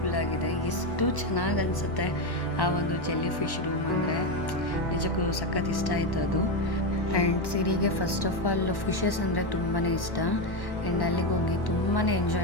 ಆಗಿದೆ. ಎಷ್ಟು ಚೆನ್ನಾಗಿ ಅನಿಸುತ್ತೆ ಆ ಒಂದು ಜೆಲ್ಲಿ ಫಿಶ್ ರೂಮ್ ಅಂದರೆ ನಿಜಕ್ಕೂ ಸಖತ್ ಇಷ್ಟ ಆಯಿತು ಅದು. ಆ್ಯಂಡ್ ಸಿರಿಗೆ ಫಸ್ಟ್ ಆಫ್ ಆಲ್ ಫಿಶಸ್ ಅಂದರೆ ತುಂಬಾ ಇಷ್ಟ. ಆ್ಯಂಡ್ ಅಲ್ಲಿಗೆ ಹೋಗಿ ತುಂಬಾ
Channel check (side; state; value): right; late; 1.1 ms